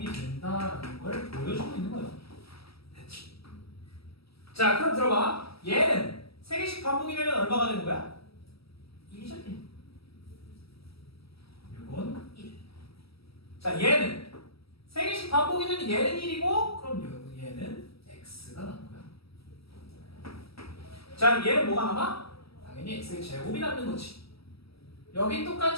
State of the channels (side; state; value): right; late; 0.76 ms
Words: 된다라는 걸 보여주고 있는 거예요. 됐지? 자, 그럼 들어봐. 얘는 3개씩 반복이 되면 얼마가 되는 거야? 1이죠, 1. 이건 1. 자, 얘는 3개씩 반복이 되면 얘는 1이고 그럼 얘는 x가 남는 거야. 자, 얘는 뭐가 남아? 당연히 x의 제곱이 남는 거지. 여기